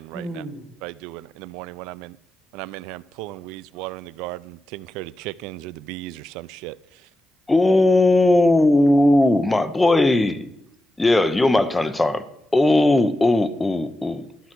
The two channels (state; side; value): normal; both; correlation 0.91